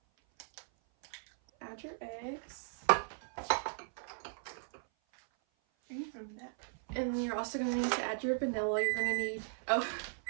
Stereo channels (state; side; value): silent; left; 53 dB below the other